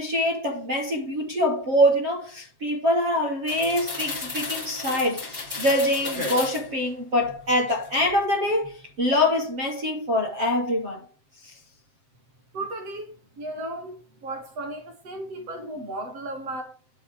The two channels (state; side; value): late; left; 7.6 ms